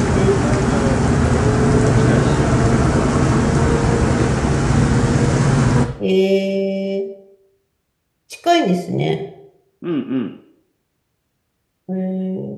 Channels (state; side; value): identical; both; correlation 1.00